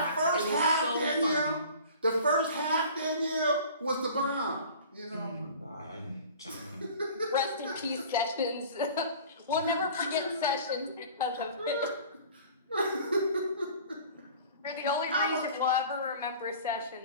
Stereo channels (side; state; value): both; inverted; correlation -0.44